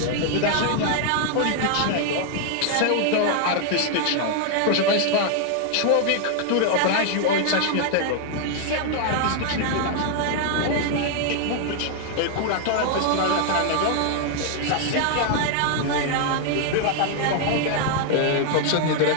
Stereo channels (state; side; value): different; both; correlation 0.00